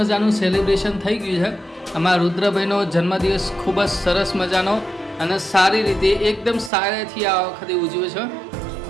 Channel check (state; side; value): drops out; left; at 6.7 s